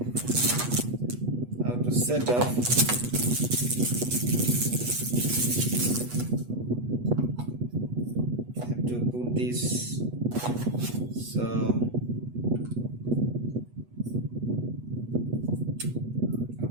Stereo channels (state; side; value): late; left; 8.2 ms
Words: how to set up? Have to put this. So